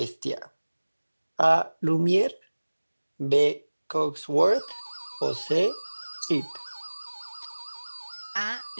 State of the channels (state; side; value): inverted; both; correlation -1.00